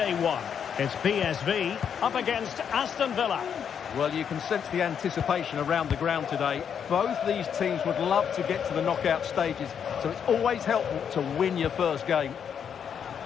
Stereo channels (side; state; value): right; quieter; 7.8 dB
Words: 1. It's PSV up against Aston Villa. Well, you can sense the anticipation around the ground today. Both these teams would love to get to the knockout stages, so it's always helpful to win your first game.